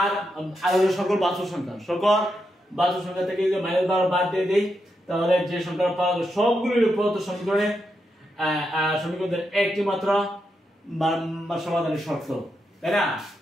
হলো সকল বাস্তব সংখ্যা থেকে যদি -12 বাদ দিয়ে দেই তাহলে যে সংখ্যা পাওয়া যাবে সবগুলোর প্রদত্ত সমীকরণের একটি মাত্র সমাধানের শর্ত, তাই না?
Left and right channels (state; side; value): normal; both; correlation 0.84